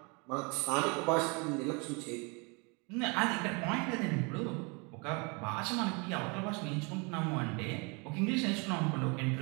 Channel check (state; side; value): quieter; left; 30.9 dB